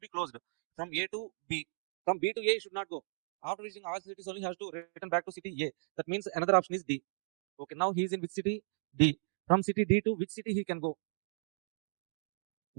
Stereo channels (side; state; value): left; silent; digital silence